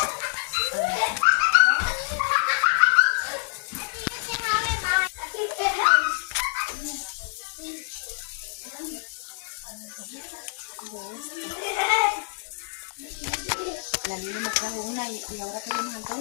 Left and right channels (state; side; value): silent; right; digital silence